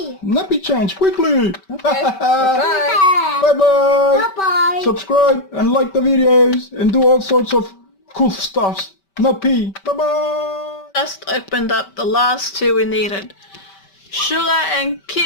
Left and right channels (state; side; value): late; right; 5.2 ms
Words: Nappy change quickly. Okay. Bye. Bye bye. Bye-bye. Subscribe and like the videos and do all sorts of cool stuffs. Not pee. Bye bye. Just opened up the last two we needed. Sugar and